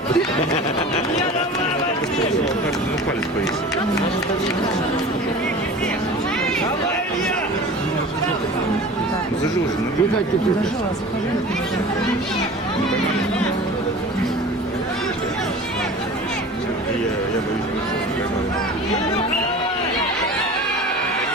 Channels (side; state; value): both; normal; correlation 0.38